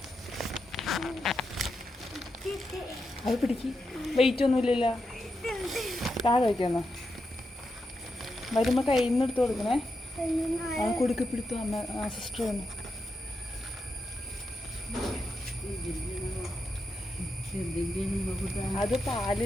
അത് പിടിക്ക്. വെയിറ്റ് ഒന്നുമില്ലല്ലോ. താഴെ വയ്ക്കാന്നോ? വരുമ്പോൾ കയ്യിൽ നിന്ന് എടുത്ത് കൊടുക്കണേ. ആ കൊടുക്ക പിടുത്തു അമ്മ സിസ്റ്റർ വന്നു. അത് പാല്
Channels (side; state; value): both; normal; correlation 0.86